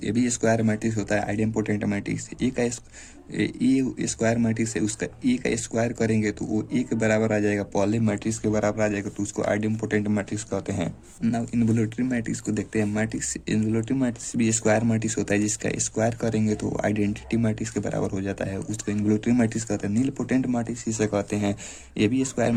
भी स्क्वायर मैट्रिक्स होता है। Idempotent matrix A square matrix है उसका ए का स्क्वायर करेंगे तो वो ए के बराबर आ जाएगा, पहले मैट्रिक्स के बराबर आ जाएगा तो उसको आइडेम्पोटेंट मैट्रिक्स कहते हैं। नाउ इन्वोल्यूटरी मैट्रिक्स को देखते हैं। इन्वोल्यूटरी मैट्रिक्स भी स्क्वायर मैट्रिक्स होता है जिसका स्क्वायर करेंगे तो आइडेंटिटी मैट्रिक्स के बराबर हो जाता है, उसको इन्वोल्यूटरी मैट्रिक्स कहते हैं। नीलपोटेंट मैट्रिक्स इसे कहते हैं। ये भी स्क्वायर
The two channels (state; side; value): identical; both; correlation 1.00